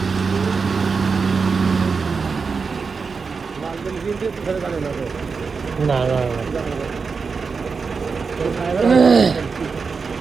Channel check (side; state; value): left; quieter; 5.0 dB